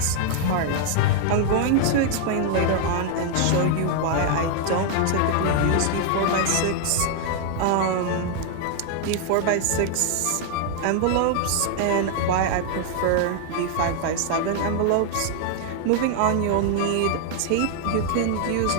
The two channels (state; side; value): different; both; correlation 0.00